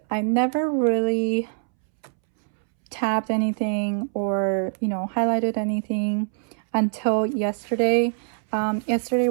I never really tabbed anything or, you know, highlighted anything until yesterday. Yesterday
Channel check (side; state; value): left; silent; 63 dB below the other